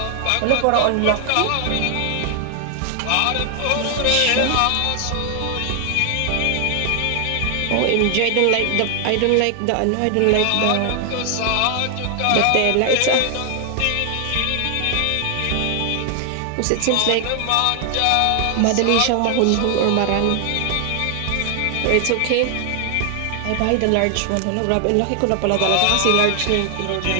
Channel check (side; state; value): both; different; correlation 0.00